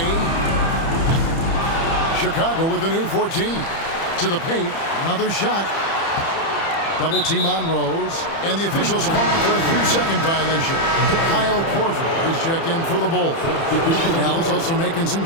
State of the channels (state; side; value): late; right; 30 ms